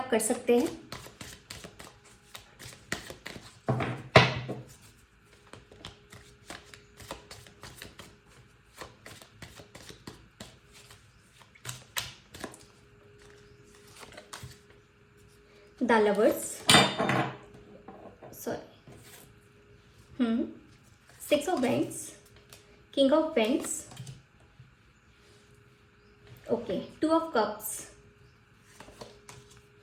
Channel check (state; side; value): identical; both; correlation 1.00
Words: कर सकते हैं। The lovers, sorry, 6 of wands, king of wands, okay, 2 of cups,